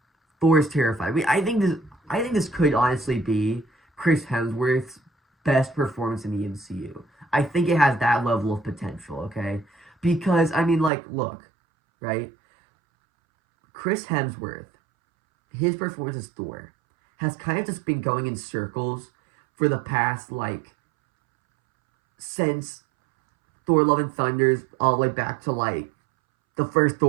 Thor is terrified. I think this could honestly be Chris Hemsworth's best performance in the MCU. I think it has that level of potential, okay? Because, I mean, like, look, right? Chris Hemsworth, his performance as Thor, has kind of just been going in circles for the past, like, since Thor Love and Thunder's all the way back to, like, the first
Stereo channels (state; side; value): drops out; left; at 10.9 s